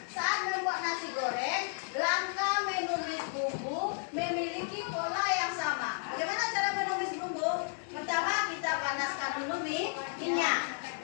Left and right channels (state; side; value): silent; right; 56 dB below the other